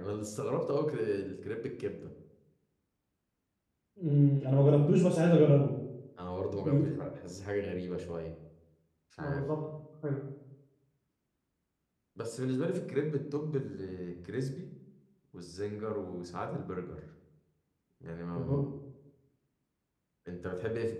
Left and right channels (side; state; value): both; identical; correlation 1.00